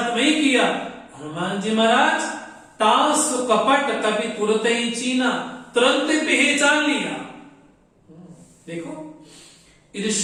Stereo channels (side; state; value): both; identical; correlation 1.00